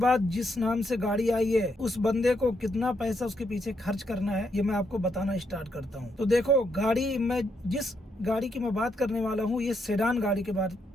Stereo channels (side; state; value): both; normal; correlation 0.78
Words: जिस नाम से गाड़ी आई है उस बंदे को कितना पैसा उसके पीछे खर्च करना है, ये मैं आपको बताना स्टार्ट करता हूँ। तो देखो, गाड़ी मैं जिस गाड़ी की मैं बात करने वाला हूँ, ये सेडान गाड़ी के